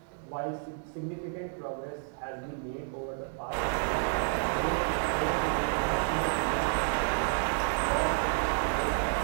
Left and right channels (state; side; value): silent; left; digital silence